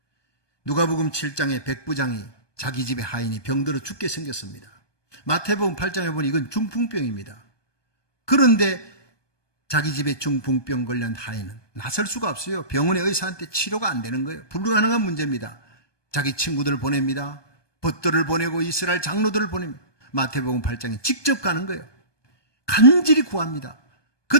누가복음 7장에 백부장이 자기 집에 하인이 병들어 죽게 생겼습니다. 마태복음 8장에 보니 이건 중풍병입니다. 그런데 자기 집에 중풍병 걸린 하인은 나설 수가 없어요. 병원의 의사한테 치료가 안 되는 거예요. 불가능한 문제입니다. 자기 친구들을 보냅니다. 벗들을 보내고 이스라엘 장로들을 보냅니다. 마태복음 8장에 직접 가는 거예요. 간절히 구합니다.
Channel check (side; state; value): right; late; 1.2 ms